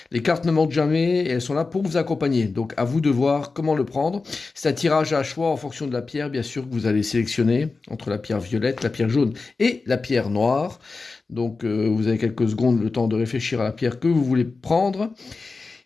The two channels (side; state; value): right; quieter; 4.0 dB